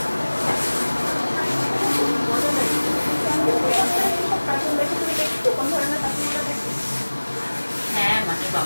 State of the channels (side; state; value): both; inverted; correlation -1.00